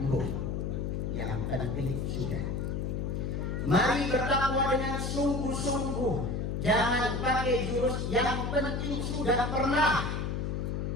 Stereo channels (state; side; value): noise; left; hum, 1 dB below the sound